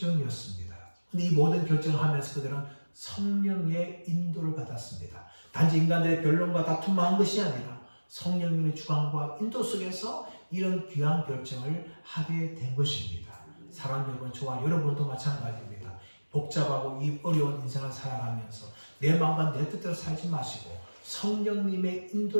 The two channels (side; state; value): both; inverted; correlation -1.00